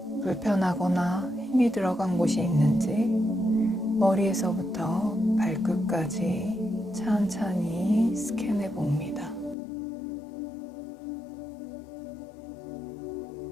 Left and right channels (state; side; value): drops out; right; at 9.6 s